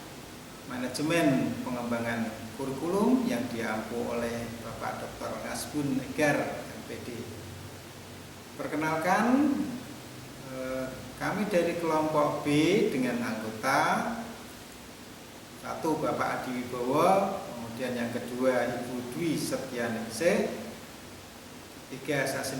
Manajemen Pengembangan Kurikulum yang diampu oleh Bapak Dr. Ngasbun Egar, MPD. Perkenalkan, kami dari kelompok B dengan anggota satu Bapak Adi Wibowo, kemudian yang kedua Ibu Dwi Setianingsih, tiga saya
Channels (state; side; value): identical; both; correlation 1.00